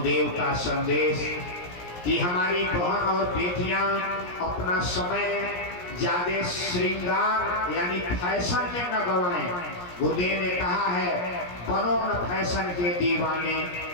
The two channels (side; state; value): right; late; 17 ms